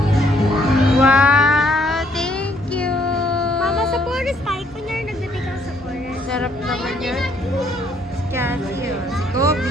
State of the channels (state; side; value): normal; both; correlation 0.67